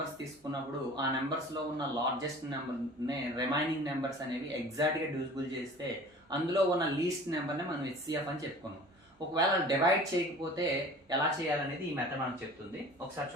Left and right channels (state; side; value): normal; both; correlation 0.44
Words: తీసుకున్నప్పుడు ఆ నెంబర్స్లో ఉన్న లార్జెస్ట్ నెంబర్ని రిమైనింగ్ నెంబర్స్ అనేవి ఎగ్జాక్ట్గా డివిజిబుల్ చేస్తే అందులో ఉన్న లీస్ట్ నెంబర్ని మనం హెచ్సిఎఫ్ అని చెప్పుకున్నాం. ఒకవేళ డివైడ్ చేయకపోతే ఎలా చేయాలనేది ఈ మెథడ్ మనకు చెప్తుంది. ఒకసారి